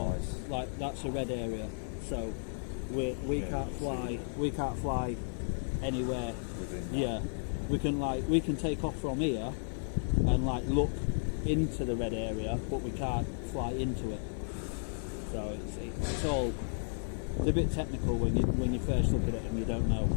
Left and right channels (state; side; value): silent; right; 55 dB below the other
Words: like that's a red area, so we can't fly anywhere. We can take off from here and like look into the red area, but we can't fly into it. So it's a bit technical when you first look at it and you don't know.